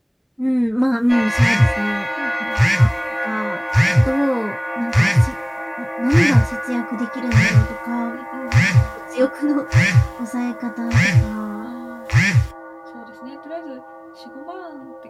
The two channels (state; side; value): identical; both; correlation 1.00